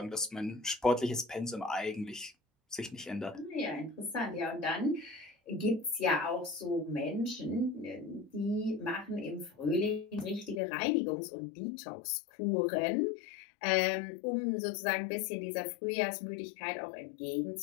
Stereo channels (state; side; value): drops out; right; at 10.6 s